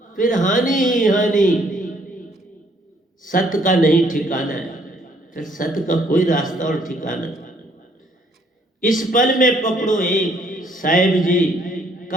फिर हानि ही हानि। सत्य का नहीं ठिकाना है, फिर सत्य का कोई रास्ता और ठिकाना। इस पल में पकड़ो एक, साहिब जी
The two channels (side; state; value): both; normal; correlation 0.65